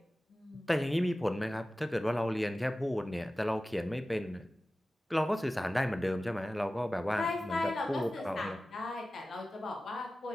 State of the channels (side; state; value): both; normal; correlation 0.96